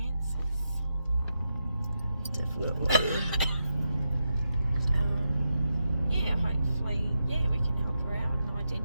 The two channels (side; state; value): both; inverted; correlation -0.86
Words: Definitely. Hopefully, we can help her out and